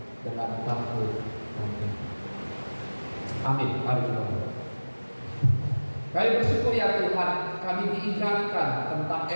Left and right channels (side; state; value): both; inverted; correlation -1.00